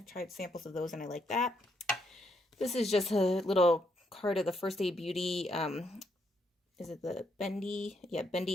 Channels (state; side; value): normal; both; correlation 0.76